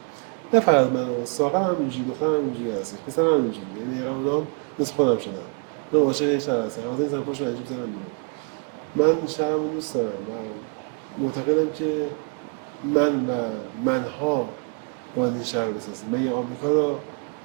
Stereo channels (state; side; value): quieter; left; 38.6 dB